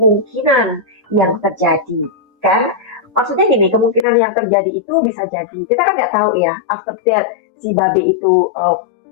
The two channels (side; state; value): right; drops out; at 4.0 s